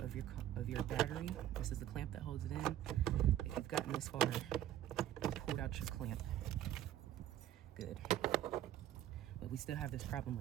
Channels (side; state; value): left; quieter; 12.2 dB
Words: your battery. This is the clamp that holds it in. If you've gotten this far, you pulled out your clamp. Good. But we still have this problem